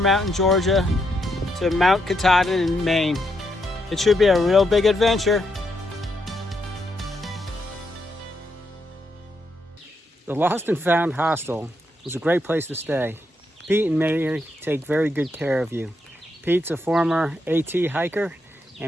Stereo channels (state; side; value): normal; both; correlation 0.79